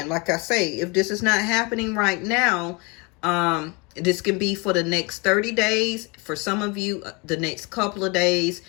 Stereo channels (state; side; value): quieter; right; 28.7 dB